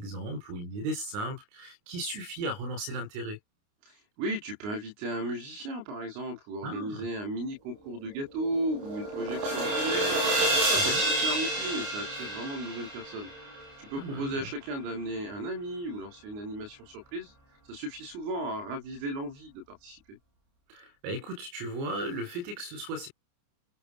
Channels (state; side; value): late; left; 29 ms